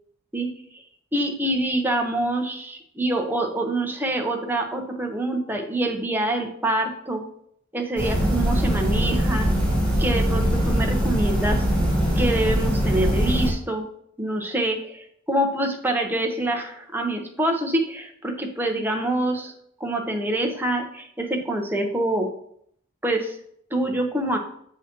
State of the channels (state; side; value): normal; both; correlation 0.68